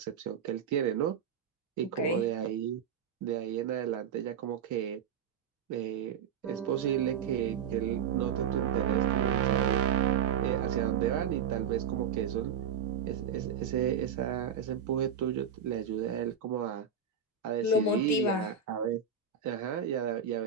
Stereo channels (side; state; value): left; quieter; 7.2 dB